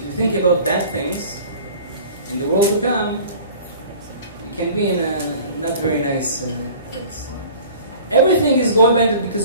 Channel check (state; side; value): inverted; both; correlation -0.45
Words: you think about bad things, in the world to come, you can be in a not very nice place. Everything is going by